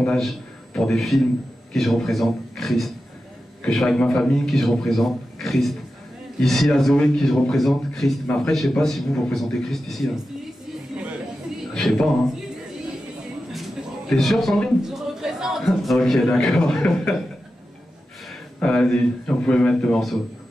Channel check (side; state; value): both; normal; correlation 0.92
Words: pour des films, qui je représente? Christ. Que je sois avec ma famille, qui je représente? Christ. Ici à Zoé, qui je représente? Christ. Mais après, je sais pas si vous représentez Christ ici. Là. Je sais pas, hein. T'es sûr, Sandrine? Je représente. Ok, d'accord. Vas-y, on pouvait mettre le morceau.